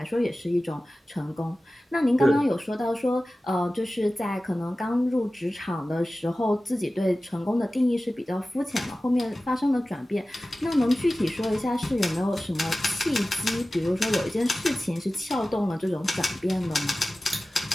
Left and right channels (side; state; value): both; normal; correlation 0.96